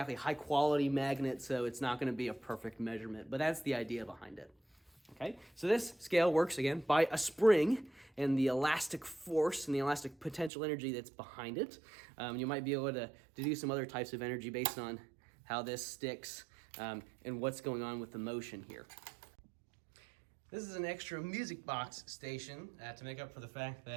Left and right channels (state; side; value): drops out; left; at 10.5 s